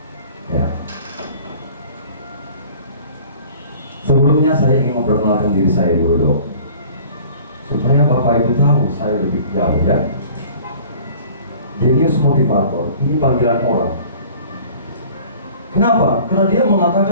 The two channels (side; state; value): both; inverted; correlation -0.48